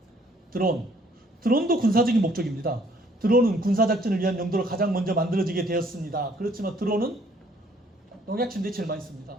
드론도 군사적인 목적입니다. 드론은 군사작전을 위한 용도로 가장 먼저 만들어지게 되었습니다. 그렇지만 드론은 농약 침대에 제일 많이 씁니다.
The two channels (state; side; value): normal; both; correlation 0.62